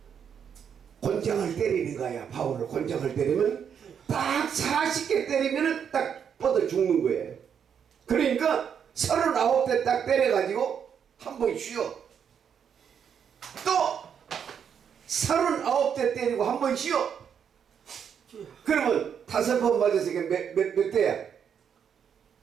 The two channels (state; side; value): quieter; left; 7.7 dB